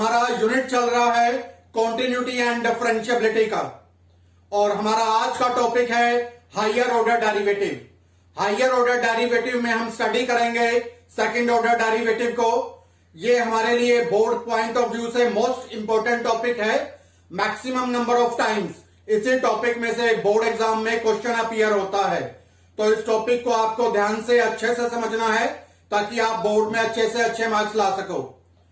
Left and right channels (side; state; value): both; identical; correlation 1.00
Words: unit चल रहा है कॉन्टिन्यूटी एंड डिफरेंशियबिलिटी का और हमारा आज का टॉपिक है higher order derivative. Higher order derivative में हम स्टडी करेंगे सेकंड ऑर्डर डेरिवेटिव को। ये हमारे लिए बोर्ड पॉइंट ऑफ व्यू से मोस्ट इंपोर्टेंट टॉपिक है। मैक्सिमम नंबर ऑफ टाइम्स इसी टॉपिक में से बोर्ड एग्जाम में क्वेश्चन अपीयर होता है, तो इस टॉपिक को आपको ध्यान से अच्छे से समझना है ताकि आप बोर्ड में अच्छे से अच्छे मार्क्स ला सको।